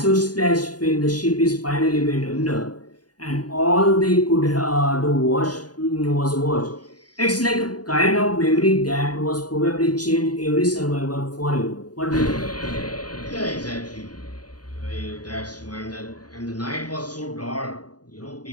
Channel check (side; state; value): right; late; 0.69 ms